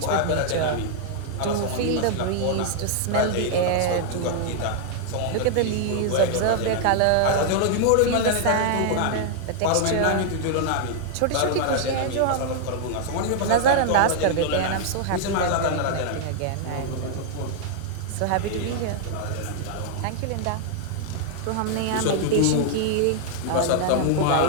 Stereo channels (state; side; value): different; both; correlation -0.01